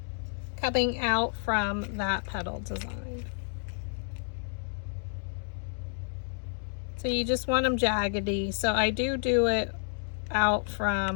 coming out from that petal design. So you just want them jaggedy. So I do it out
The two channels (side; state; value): right; silent; digital silence